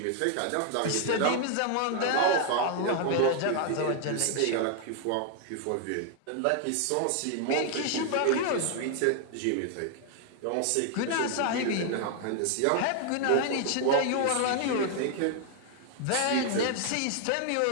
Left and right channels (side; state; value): both; different; correlation 0.00